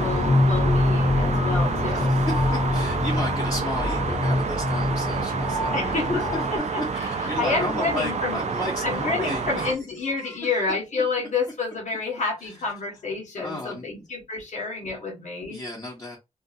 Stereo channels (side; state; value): both; normal; correlation 0.54